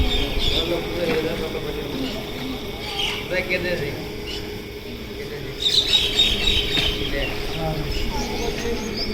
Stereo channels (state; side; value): identical; both; correlation 1.00